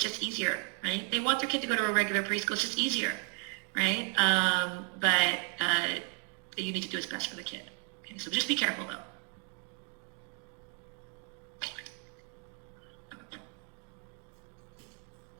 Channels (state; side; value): quieter; left; 37.1 dB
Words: easier, right? They want their kid to go to a regular preschool. It's just easier, right? But you need to do what's best for the kid. Okay, so just be careful though.